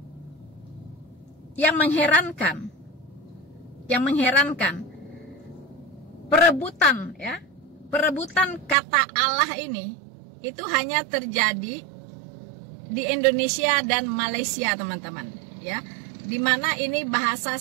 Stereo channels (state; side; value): drops out; left; at 8.8 s